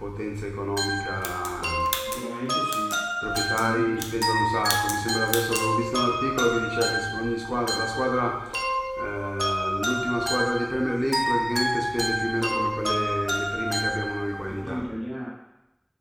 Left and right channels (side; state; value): both; identical; correlation 1.00